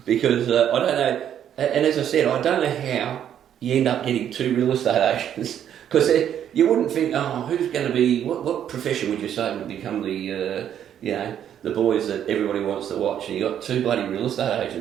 Because I don't know, and as I said, I don't know how you end up getting 2 real estate agents. Because you wouldn't think, oh, who's going to be, what profession would you say would become the, the boys that everybody wants to watch? And you got 2 bloody real estate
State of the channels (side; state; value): left; quieter; 9.8 dB